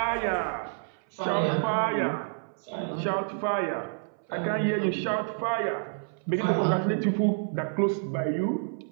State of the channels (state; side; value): silent; left; 59 dB below the other